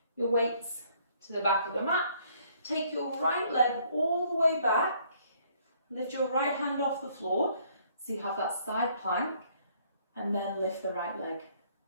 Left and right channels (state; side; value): inverted; both; correlation -0.64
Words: your weights to the back of the mat. Take your right leg all the way back. Lift your right hand off the floor so you have that side plank, and then lift the right leg.